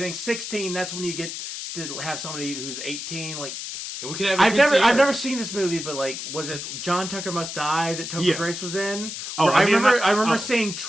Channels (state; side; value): noise; left; hiss, 7 dB below the sound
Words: 16, that's when you get to have somebody who's 18, And we could have I've never seen this movie, but was it John Tucker Must Die that Topher Grace was in? I remember seeing